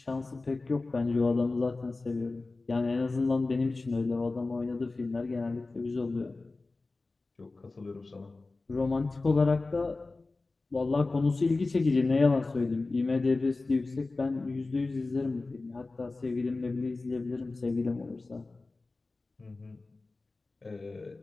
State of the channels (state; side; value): quieter; right; 3.5 dB